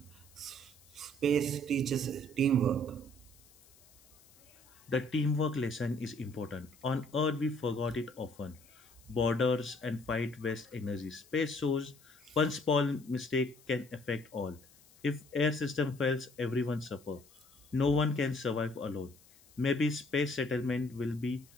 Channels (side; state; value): left; noise; hiss, 27 dB below the sound